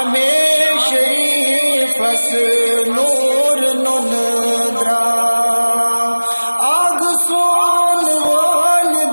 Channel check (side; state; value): both; inverted; correlation -1.00